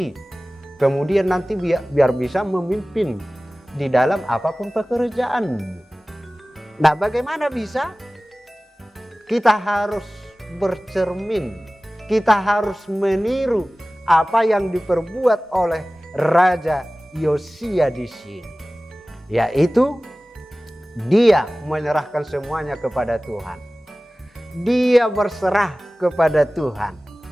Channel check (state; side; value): normal; both; correlation 0.97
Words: Kemudian nanti biar bisa memimpin di dalam apapun pekerjaan. Nah, bagaimana bisa? Kita harus bercermin, kita harus meniru apa yang diperbuat oleh Raja Yosia di sini. Yaitu dia menyerahkan semuanya kepada Tuhan. Dia berserah kepada Tuhan.